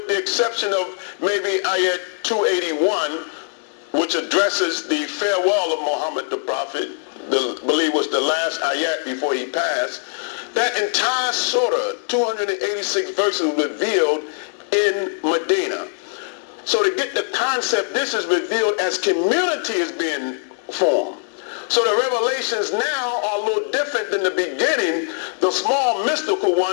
the exception of maybe ayat 281, which addresses the farewell of Muhammad the Prophet, I believe was the last ayat before he passed. That entire surah, 286 verses, revealed in Medina. So to get the concept, this is revealed as community is being formed. So the revelations now are a little different than the beginning, the small mystical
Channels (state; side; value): silent; right; digital silence